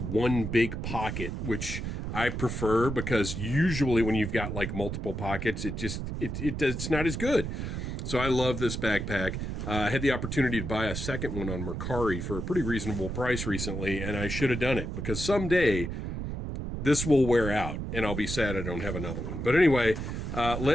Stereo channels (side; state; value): right; noise; rumble, 4 dB below the sound